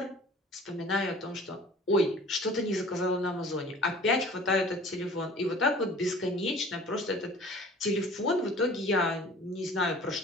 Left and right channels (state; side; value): normal; both; correlation 0.46